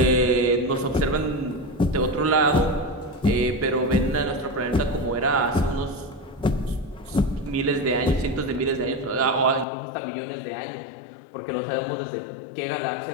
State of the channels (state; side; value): drops out; right; at 9.7 s